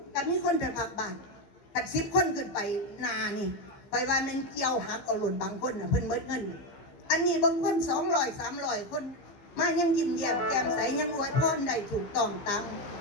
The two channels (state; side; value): late; right; 15 ms